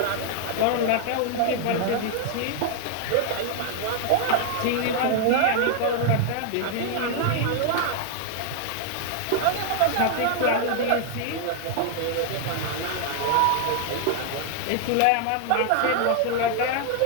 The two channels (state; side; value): different; both; correlation 0.00